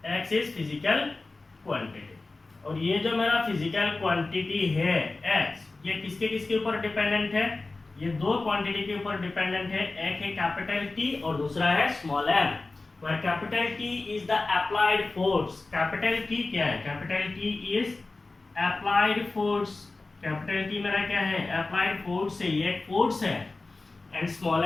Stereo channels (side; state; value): right; quieter; 3.4 dB